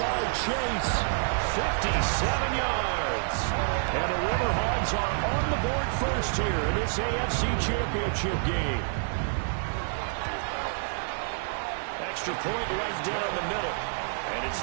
Chase, 57 yards. And the River Hogs are on the board first here in this AFC Championship game. Extra point right down the middle. And it's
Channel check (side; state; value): left; silent; 59 dB below the other